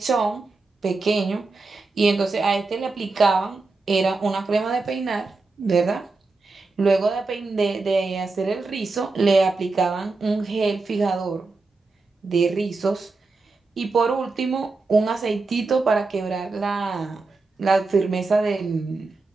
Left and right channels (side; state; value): left; quieter; 3.7 dB